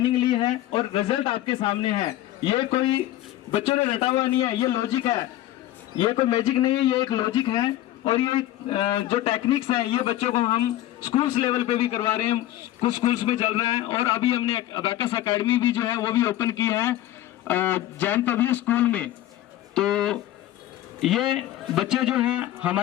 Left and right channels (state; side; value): quieter; right; 14.1 dB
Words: ली है और रिजल्ट आपके सामने है। ये कोई बच्चों ने रटा हुआ नहीं है, ये लॉजिक है, ये कोई मैजिक नहीं है, ये एक लॉजिक है। और ये जो टेक्निक्स हैं ये बच्चों को हम स्कूल्स लेवल पे भी करवा रहे हैं, कुछ स्कूल्स में चल रहा है। और अभी हमने अबेकस एकेडमी भी जो है वो भी ओपन की है जैन पब्लिक स्कूल में। तो ये बच्चे जो हैं